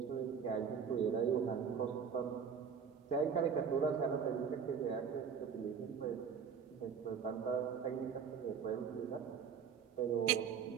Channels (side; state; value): left; quieter; 6.8 dB